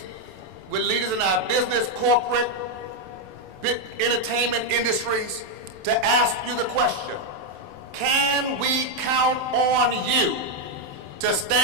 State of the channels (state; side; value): late; left; 27 ms